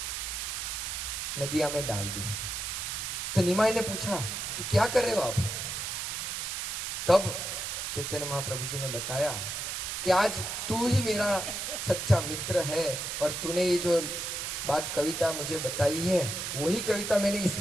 नदिया में डाल दी। तो निमाई ने पूछा कि क्या कर रहे हो आप। तब चैतन्य महाप्रभु जी ने बताया कि आज तू ही मेरा सच्चा मित्र है और तूने ये जो बात कविता मुझे बताई है वही कविता मैंने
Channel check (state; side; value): noise; right; hiss, 3 dB below the sound